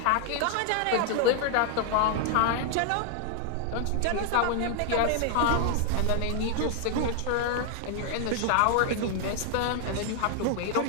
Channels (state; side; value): different; both; correlation 0.00